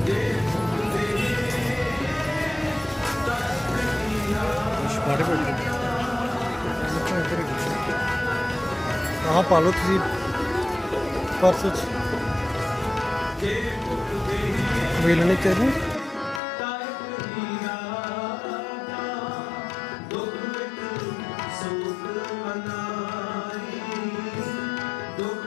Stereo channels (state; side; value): drops out; right; at 16.4 s